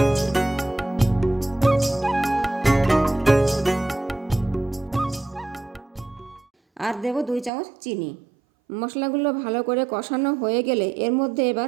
আর দেবো 2 চামচ চিনি। মশলাগুলো ভালো করে কষানো হয়ে গেলে এর মধ্যে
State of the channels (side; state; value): left; drops out; at 7.5 s